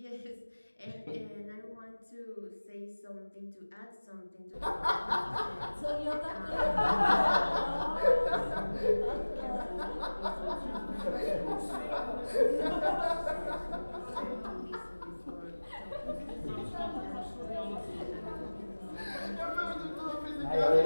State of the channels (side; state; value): both; inverted; correlation -1.00